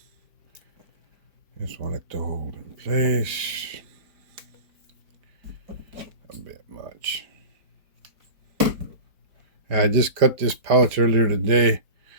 Just want it to hold in place. A bit much. I just cut this pouch earlier today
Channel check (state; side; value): late; left; 5.0 ms